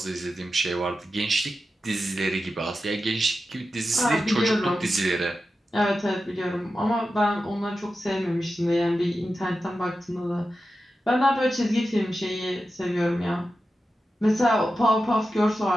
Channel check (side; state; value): both; normal; correlation 0.91